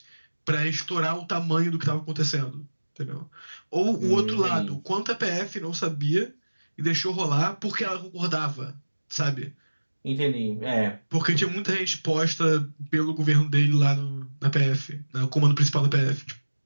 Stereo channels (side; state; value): both; inverted; correlation -1.00